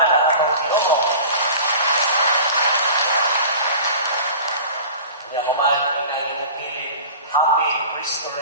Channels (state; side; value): inverted; both; correlation -0.39